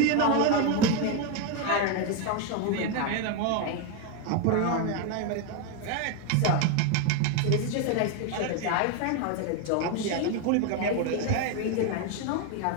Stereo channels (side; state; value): both; different; correlation 0.02